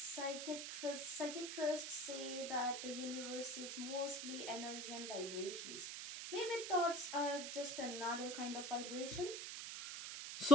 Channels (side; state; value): right; noise; hiss, 6 dB below the sound